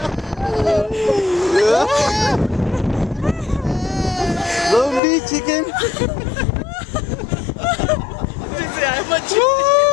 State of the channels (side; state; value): right; drops out; at 5.0 s